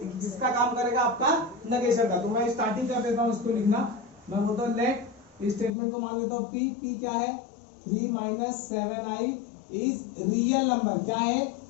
जिसका काम करेगा आपका नेगेशन का। तो मैं स्टार्टिंग कर देता हूं इसको लिखना। मैं बोलता हूं लेट, स्टेटमेंट को मान लेता हूं पी। पी क्या है, 3 - 7i इज रियल नंबर। क्या है,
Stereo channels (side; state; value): right; drops out; at 5.7 s